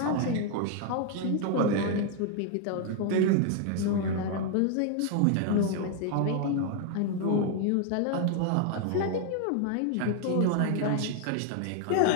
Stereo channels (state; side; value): different; both; correlation 0.00